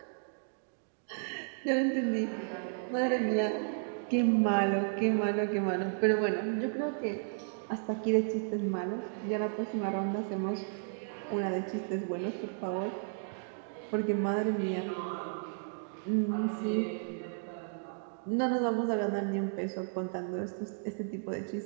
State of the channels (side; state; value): left; silent; digital silence